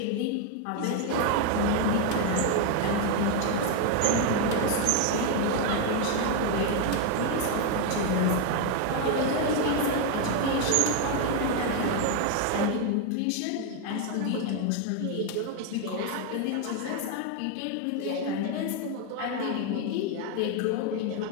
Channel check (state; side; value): different; both; correlation 0.01